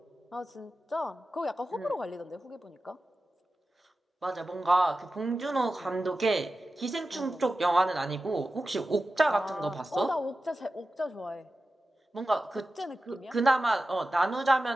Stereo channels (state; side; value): normal; both; correlation 0.94